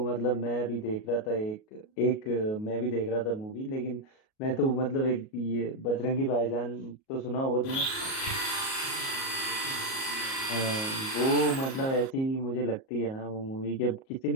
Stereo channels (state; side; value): late; right; 37 ms